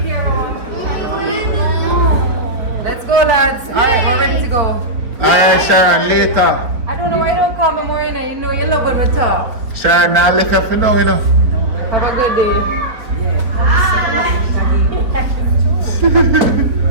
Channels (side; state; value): left; late; 4.7 ms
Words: care. Let's go, lads. Alright, we're ready to go. Alright, Sharon, later. I don't know why you don't call me more, you know you love when we talk. Sharon, now left her for now, you know. Have a good day.